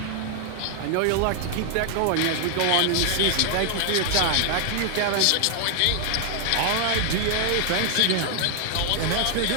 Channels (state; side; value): different; both; correlation 0.00